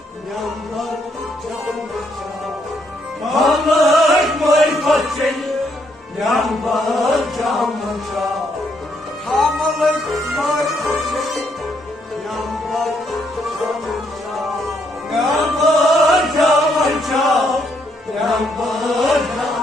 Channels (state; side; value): normal; both; correlation 0.73